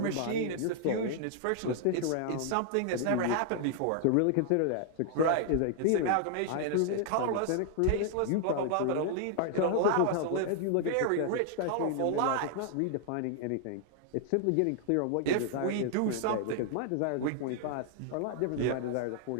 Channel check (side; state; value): both; different; correlation 0.00